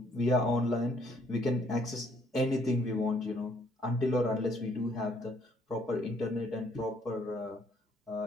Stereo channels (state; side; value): normal; both; correlation 0.66